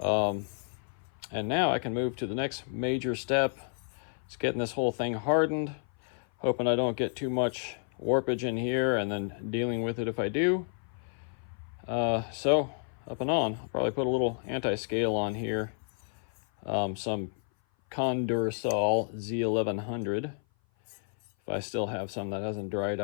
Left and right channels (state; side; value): silent; right; 56 dB below the other